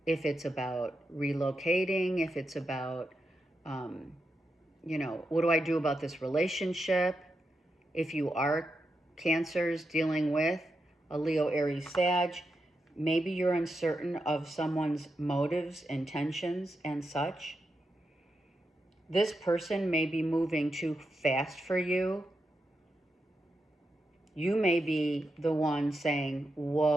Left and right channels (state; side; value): normal; both; correlation 0.86